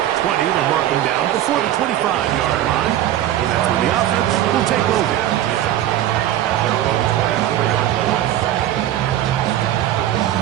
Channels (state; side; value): quieter; left; 12.4 dB